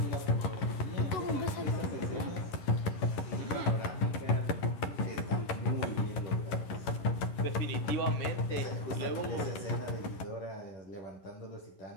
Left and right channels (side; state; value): right; late; 11 ms